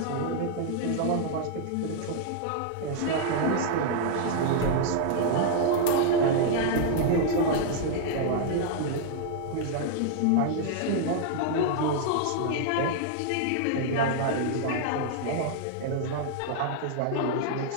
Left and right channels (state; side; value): different; both; correlation -0.01